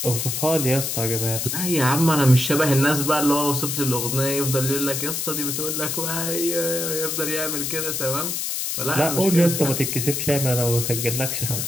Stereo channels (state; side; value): noise; left; hiss, 2 dB below the sound